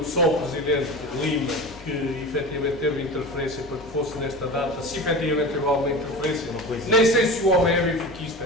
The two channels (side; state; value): both; normal; correlation 0.32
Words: só o Presidente Lima que efetivamente teve interferência para que fosse nesta data, se efetivamente teve alguma interferência, nem sei se o homem é